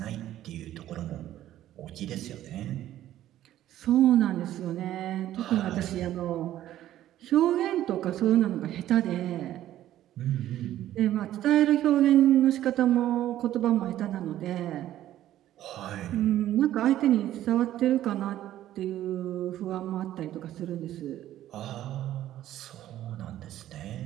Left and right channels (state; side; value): quieter; left; 13.0 dB